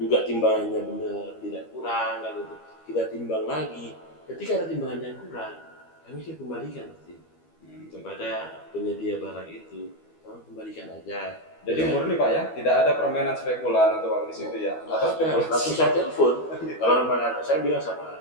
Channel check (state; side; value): late; right; 12 ms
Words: timbangannya benar, tidak kurang kan itu. Kita timbang lagi. Ketika ada timbangan yang kurang, kami sih kembalikan nanti kepada penyedia barang itu. Tolong kembalikan aja. Jadi murni Pak ya, tidak ada permainan spekulan atau di situ ya. Atau spekulasi. Langsung saya telepon. Kalau saya bilang sama